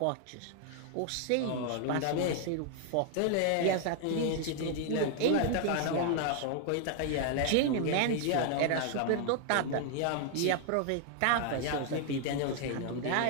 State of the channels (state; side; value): different; both; correlation 0.00